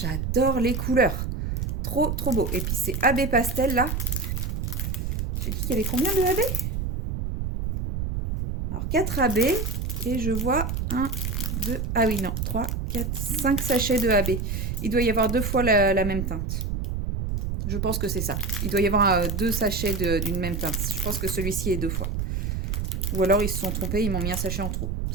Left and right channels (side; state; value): right; noise; rumble, 2 dB below the sound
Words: les couleurs. Trop, trop beau. Et puis, c'est AB Pastel, là. J'ai dit qu'il y avait combien de AB? Alors, 4 AB. Et je vois 1, 2, ah oui, non, 3, 4, 5 sachets de AB. Il doit y avoir 2 fois la même teinte. Je pense que c'est ça. Il doit y avoir 2 sachets d'une même teinte. Je pense que celui-ci est 2 fois. Ou alors, ils se sont trompés, ils m'ont mis un sachet en trop.